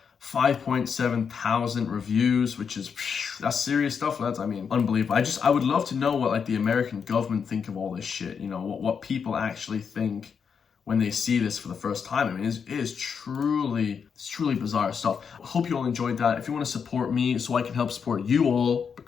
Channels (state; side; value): quieter; right; 6.5 dB